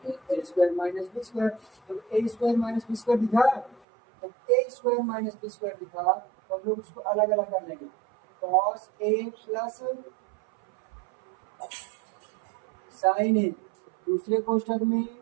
a square minus b square. जब a square minus b square दिखा जब a square minus b square दिखा तो हम लोग उसको अलग अलग कर लेंगे cos a प्लस साइन ए, दूसरे कोष्ठक में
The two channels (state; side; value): drops out; left; at 3.8 s